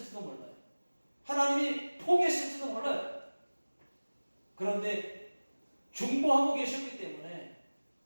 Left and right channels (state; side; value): inverted; both; correlation -1.00